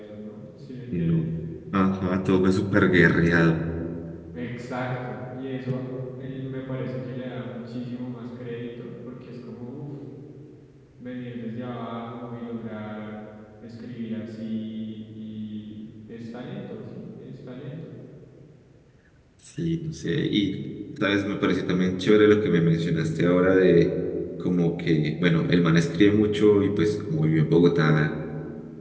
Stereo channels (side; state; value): both; identical; correlation 1.00